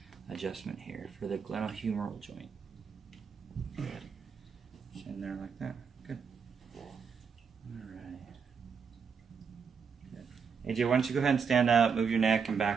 adjustment here for the glenohumeral joint. Good. Just in there like that. Good. Alright. Good. AJ, why don't you go ahead and stand up, move your neck and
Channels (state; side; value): quieter; left; 6.1 dB